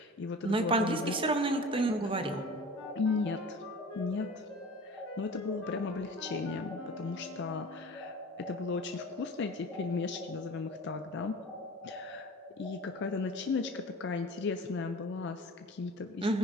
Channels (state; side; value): normal; both; correlation 0.40